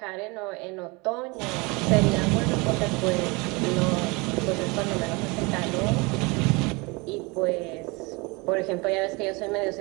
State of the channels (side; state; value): left; quieter; 26.9 dB